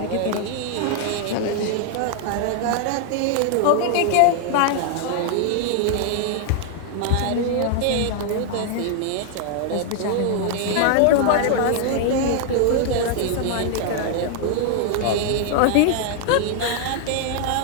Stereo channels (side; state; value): both; different; correlation 0.00